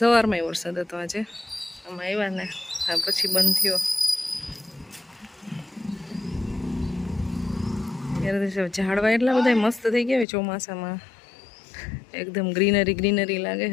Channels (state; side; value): drops out; right; at 10.2 s